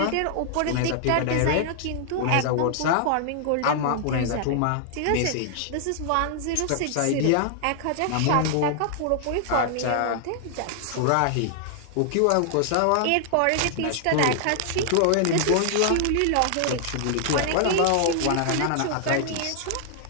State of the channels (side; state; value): both; different; correlation -0.01